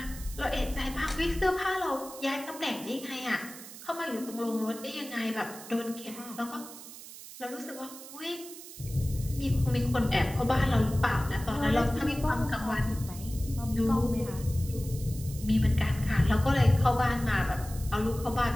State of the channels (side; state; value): right; noise; hiss, 15 dB below the sound